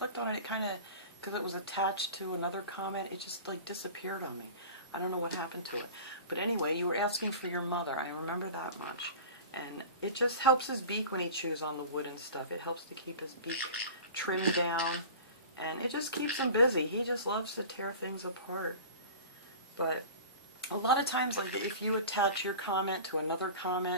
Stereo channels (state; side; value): inverted; both; correlation -0.36